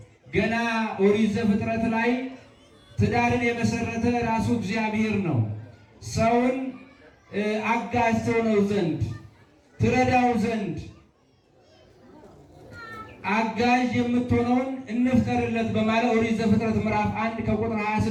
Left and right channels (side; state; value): both; identical; correlation 1.00